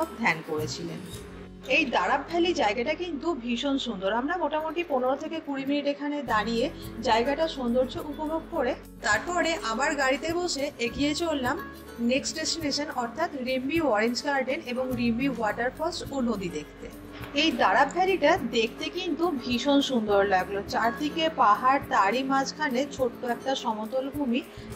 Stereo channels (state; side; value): identical; both; correlation 1.00